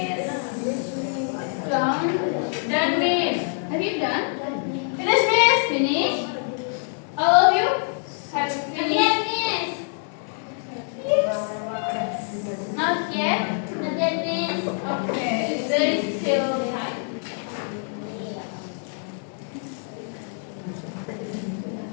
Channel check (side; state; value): right; silent; 57 dB below the other